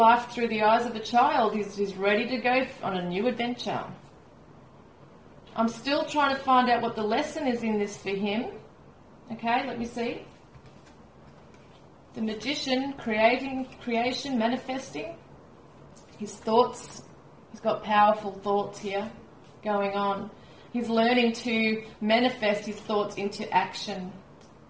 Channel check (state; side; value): identical; both; correlation 1.00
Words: through the eyes of a child. He's ready to go on a new adventure. I'm still trying to find out what the lesson is in this for him. Okay, let me see. The Magician, creation, manifesting. His thoughts. He's got powerful thoughts here going on. He's learning to manifest his thoughts into action.